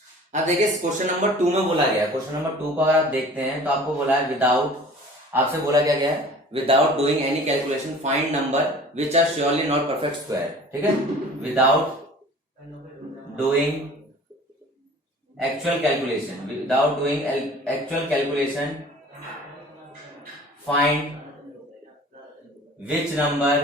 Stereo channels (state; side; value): normal; both; correlation 0.46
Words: अब देखिए क्वेश्चन नंबर 2 में बोला गया, क्वेश्चन नंबर 2 को अगर आप देखते हैं तो आपको बोला है विदाउट, आपसे बोला क्या गया है, without doing any calculation find number which are surely not perfect square. ठीक है, without doing actual calculation, without doing actual calculation find which